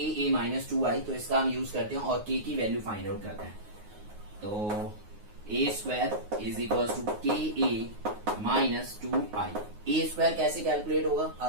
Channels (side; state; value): left; late; 9.5 ms